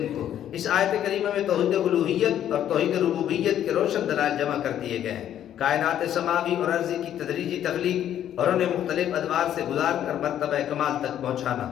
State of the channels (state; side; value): quieter; right; 10.7 dB